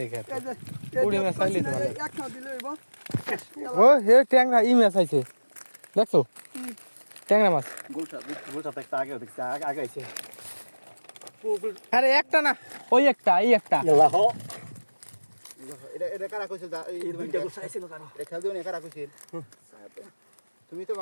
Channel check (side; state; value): both; inverted; correlation -1.00